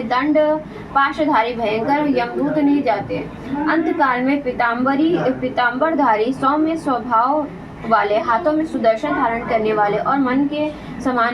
दंड पाशधारी भयंकर यमदूत नहीं जाते। अंतकाल में पीताम्बरधारी, सौम्य स्वभाव वाले, हाथों में सुदर्शन धारण करने वाले और मन के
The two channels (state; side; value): identical; both; correlation 1.00